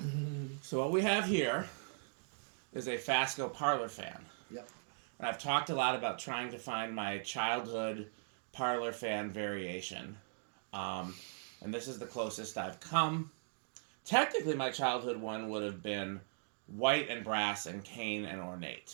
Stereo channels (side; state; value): left; silent; digital silence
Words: So what we have here is a Fasco Parlour-fan. Yep. And I've talked a lot about trying to find my childhood Parlour-fan variation. And this is the closest I've come. Technically, my childhood one would have been white and brass and cane and